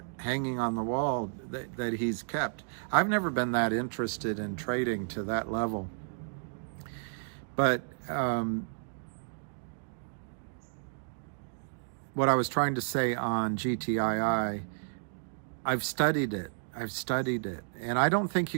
hanging on the wall that he's kept. I've never been that interested in trading to that level. But what I was trying to say on GTII, I've studied it, and I don't think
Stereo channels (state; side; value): silent; left; digital silence